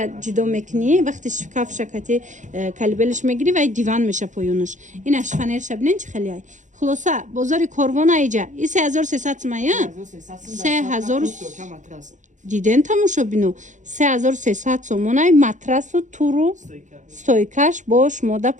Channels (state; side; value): late; left; 0.36 ms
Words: جدا میکنی وقتی شکاف شکتی کالبلش میگیری و دیوان میشه پایونش این اشفنر شبینن چه خیلی ای خلاصه بازار کاروان ایجا این 3300 سمایه 3000 диден тамошобино 3300 сомонай матрасу туру стойкаш бо шумода